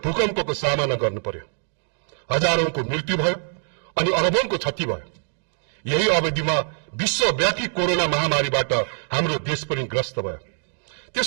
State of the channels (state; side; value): silent; left; digital silence